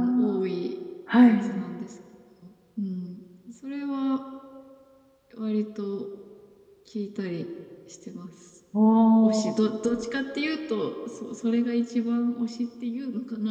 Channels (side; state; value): both; identical; correlation 1.00